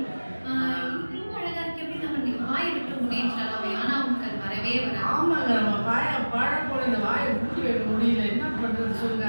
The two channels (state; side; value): inverted; both; correlation -1.00